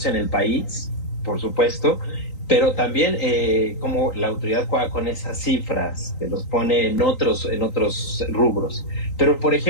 en el país, por supuesto, pero también como la autoridad juega con esas cifras, que los pone en otros rubros. Pero, por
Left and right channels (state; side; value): late; right; 3.9 ms